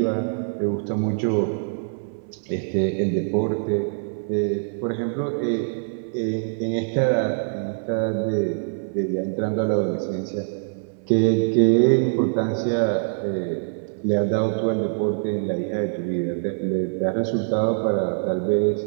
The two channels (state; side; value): silent; left; 63 dB below the other